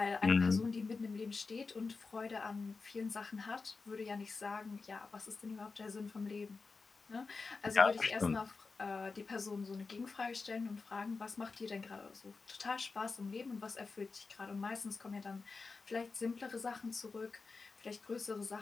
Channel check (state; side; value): quieter; right; 4.3 dB